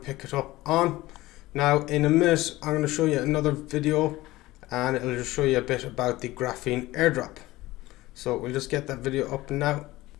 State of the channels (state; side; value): quieter; right; 18.1 dB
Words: it up on. Now in a minute I'm going to show you another video, and it'll just show you a bit about the Graphene airdrop. So we'll just get that video up now.